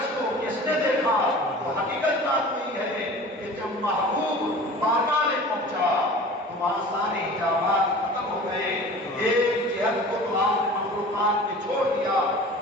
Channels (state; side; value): normal; both; correlation 0.40